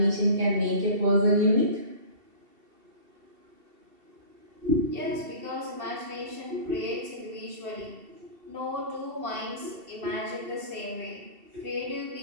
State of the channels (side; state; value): left; late; 2.7 ms